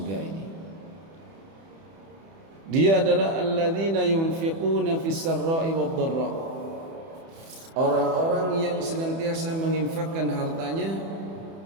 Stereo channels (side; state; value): left; late; 31 ms